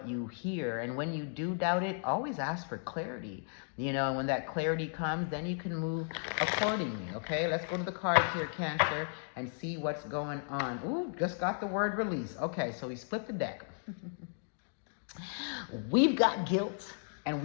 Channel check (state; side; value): silent; right; 55 dB below the other